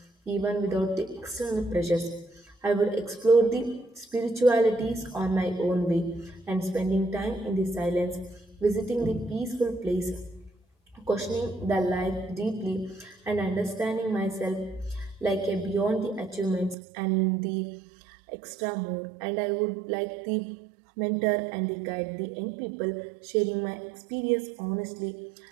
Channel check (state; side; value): drops out; left; at 16.8 s